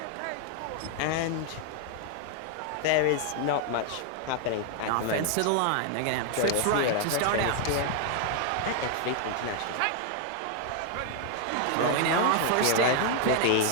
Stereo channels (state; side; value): different; both; correlation 0.00